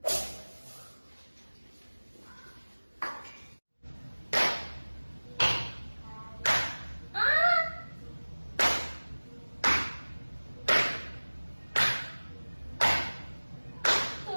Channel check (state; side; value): inverted; both; correlation -1.00